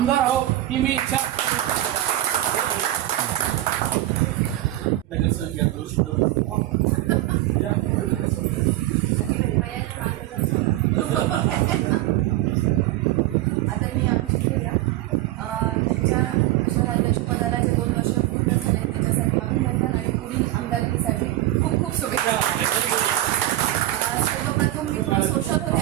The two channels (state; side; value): quieter; left; 15.2 dB